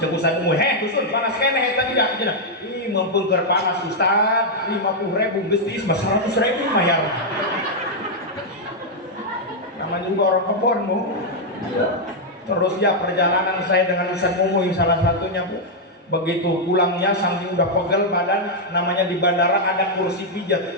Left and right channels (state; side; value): normal; both; correlation -0.02